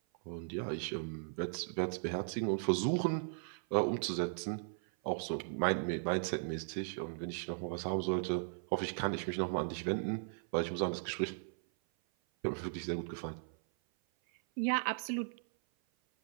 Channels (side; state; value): left; silent; 53 dB below the other